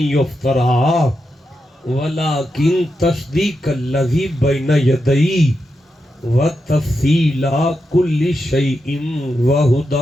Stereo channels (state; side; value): normal; both; correlation 0.86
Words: ولیکن تصدیق الذی بین یدئی وتفصیل کل شیء